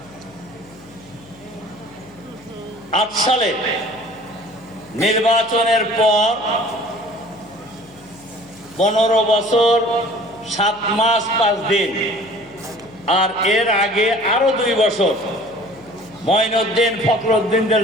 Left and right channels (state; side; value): noise; left; hum, 25 dB below the sound